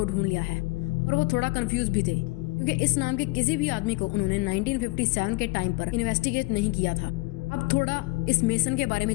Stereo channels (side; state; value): right; quieter; 23.3 dB